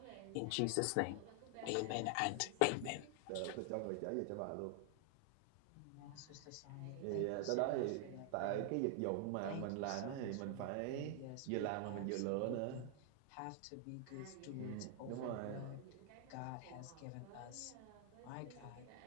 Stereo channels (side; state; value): both; different; correlation 0.00